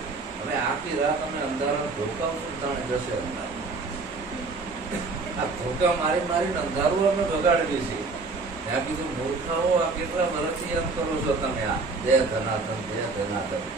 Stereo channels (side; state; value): left; quieter; 3.9 dB